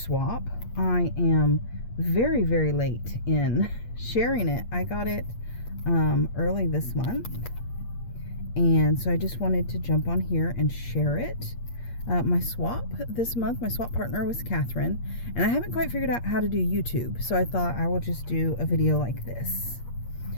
I am very late in sharing it. I got it early this month, and so I just wanted to jump on here and share it. My swap this month, my swap partner was Catherine, and I haven't quite figured out how to do YouTube, so I thought I will just do a video like this.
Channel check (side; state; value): right; late; 8.5 ms